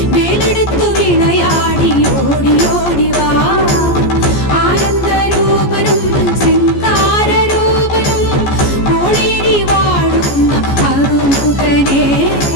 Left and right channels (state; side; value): late; right; 14 ms